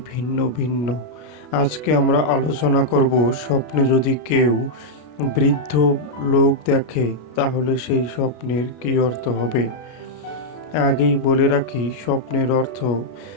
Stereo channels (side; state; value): right; late; 33 ms